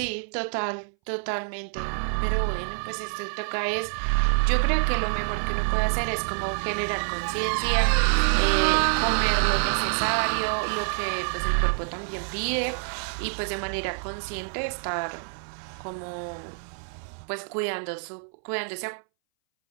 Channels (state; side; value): silent; left; 60 dB below the other